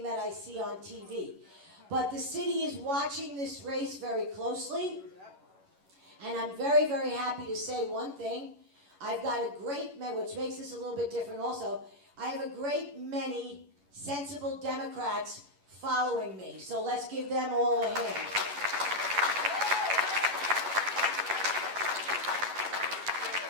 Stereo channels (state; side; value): late; left; 11 ms